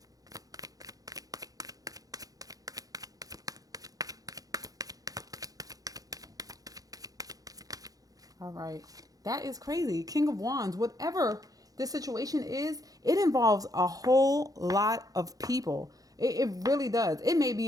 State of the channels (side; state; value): left; late; 0.17 ms